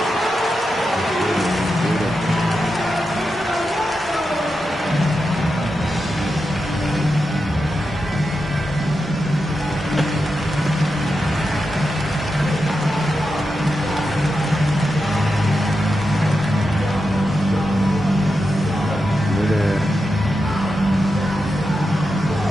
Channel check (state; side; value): normal; both; correlation 0.88